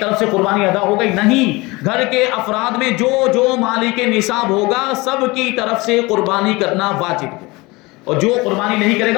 سے قربانی ادا ہو گئی۔ نہیں، گھر کے افراد میں جو جو مالک نصاب ہوگا سب کی طرف سے قربانی کرنا واجب ہے، اور جو قربانی نہیں کرے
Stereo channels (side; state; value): right; quieter; 23.3 dB